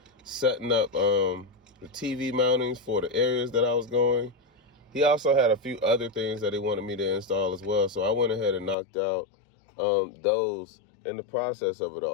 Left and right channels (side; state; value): right; drops out; at 8.8 s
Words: setting up the TV mountings for the areas that I was going. He also had a few other things that he wanted me to install as well, so I went ahead and knocked out those in the process of it